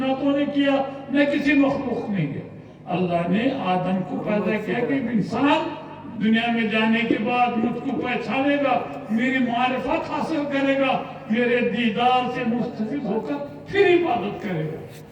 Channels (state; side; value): identical; both; correlation 1.00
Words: نے کیا، نہ کسی مخلوق نے کیا. اللہ نے آدم کو پیدا کیا کہ انسان دنیا میں جانے کے بعد مجھ کو پہچانے گا، میری معرفت حاصل کرے گا، میرے دیدار سے مستفید ہو کر پھر عبادت کرے گا.